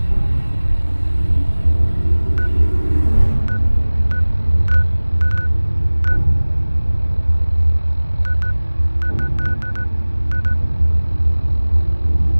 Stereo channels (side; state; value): both; inverted; correlation -1.00